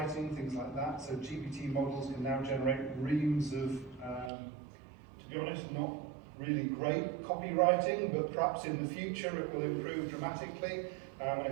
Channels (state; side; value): drops out; left; at 4.3 s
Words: things like that. So GPT models can now generate reams of, to be honest, not really great copywriting, but perhaps in the future it will improve dramatically. And